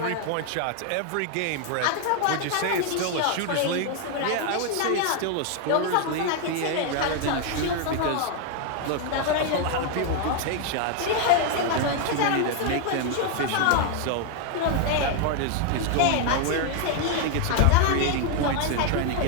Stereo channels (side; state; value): both; different; correlation 0.00